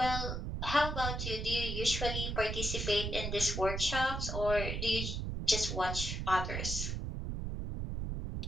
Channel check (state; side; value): noise; right; rumble, 3 dB below the sound